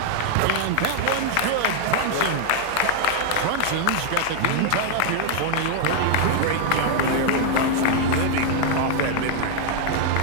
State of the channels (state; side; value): different; both; correlation 0.00